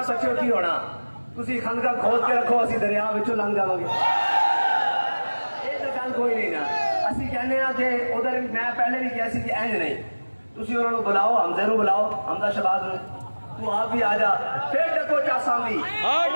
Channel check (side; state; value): both; inverted; correlation -1.00